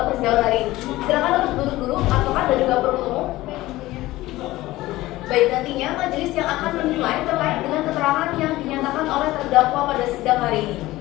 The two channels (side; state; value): right; quieter; 17.5 dB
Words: persidangan hari ini. Silakan untuk duduk dulu, advokat dan juga penuntut umum. Baik, nantinya majelis yang akan menilai terkait dengan keterangan yang dinyatakan oleh terdakwa pada sidang hari ini.